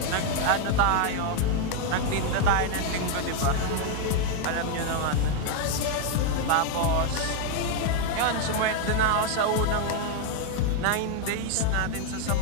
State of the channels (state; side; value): different; both; correlation 0.01